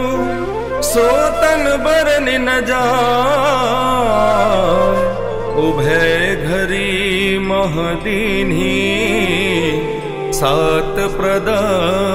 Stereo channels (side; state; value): both; identical; correlation 1.00